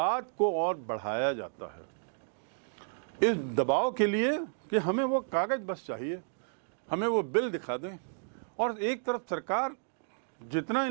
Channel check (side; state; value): left; silent; digital silence